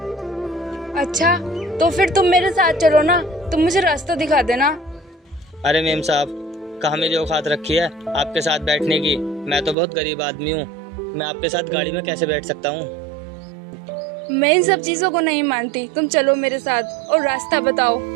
अच्छा तो फिर तुम मेरे साथ चलो ना, तुम मुझे रास्ता दिखा देना। अरे मेम साहब, कहाँ मेरी औकात रखी है आपके साथ बैठने की? मैं तो बहुत गरीब आदमी हूँ, मैं आपके साथ गाड़ी में कैसे बैठ सकता हूँ? मैं इन सब चीजों को नहीं मानती, तुम चलो मेरे साथ और रास्ता बताओ।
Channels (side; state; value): left; drops out; at 9.8 s